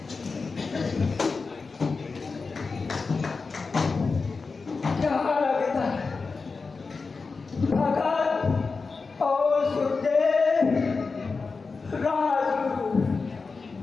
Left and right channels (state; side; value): quieter; right; 4.4 dB